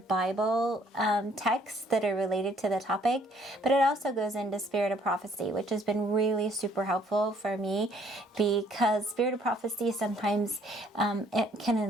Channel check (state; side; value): normal; both; correlation 0.62